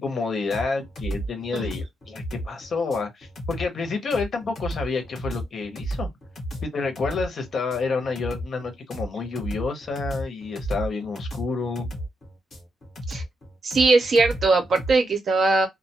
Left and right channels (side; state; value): both; normal; correlation 0.81